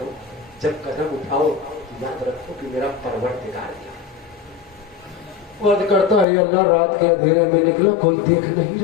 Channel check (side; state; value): right; drops out; at 6.2 s